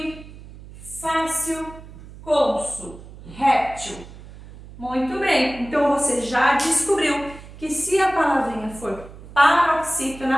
fácil, cônsul, réptil. Muito bem, então você já descobriu que se a palavrinha for paroxítona,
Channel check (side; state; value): right; noise; hum, 17 dB below the sound